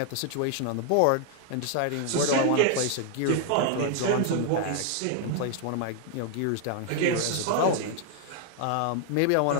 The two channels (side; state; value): both; different; correlation 0.00